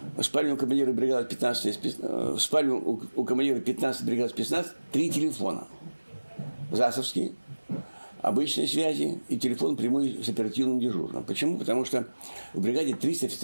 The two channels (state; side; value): inverted; both; correlation -1.00